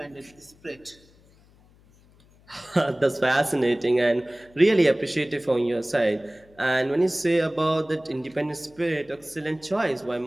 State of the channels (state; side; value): noise; left; hum, 29 dB below the sound